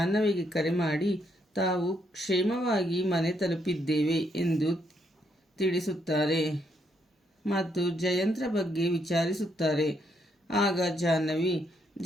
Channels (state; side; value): normal; both; correlation 0.75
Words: ಕರೆ ಮಾಡಿ ತಾವು ಕ್ಷೇಮವಾಗಿ ಮನೆ ತಲುಪಿದ್ದೇವೆ ಎಂದು ತಿಳಿಸುತ್ತಾರೆ ಮತ್ತು ಜಯಂತ್ರ ಬಗ್ಗೆ ವಿಚಾರಿಸುತ್ತಾರೆ. ಆಗ ಜಾಹ್ನವಿ